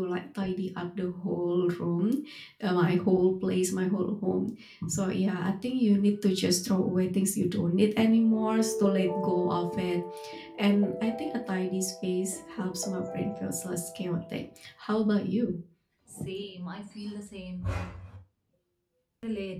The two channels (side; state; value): both; identical; correlation 1.00